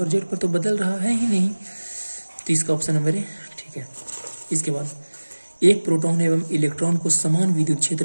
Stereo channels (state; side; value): inverted; both; correlation -1.00